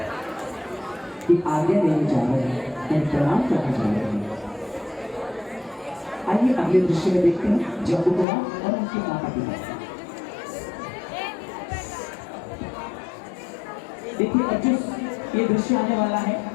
की आज्ञा लेने जा रहे हैं, प्रणाम करने जा रहे हैं। आइए अगले दृश्य में देखते हैं जम्मू कुमार और उनके माता पिता। देखिए अब जो ये दृश्य आने वाला है,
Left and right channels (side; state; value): right; drops out; at 8.2 s